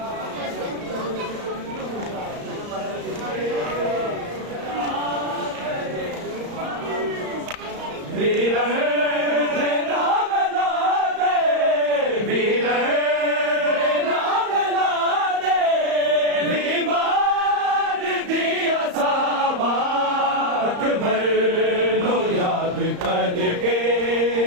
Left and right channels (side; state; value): left; late; 34 ms